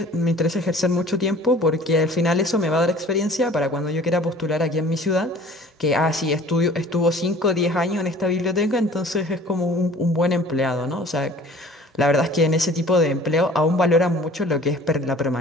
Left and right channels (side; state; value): both; normal; correlation 0.48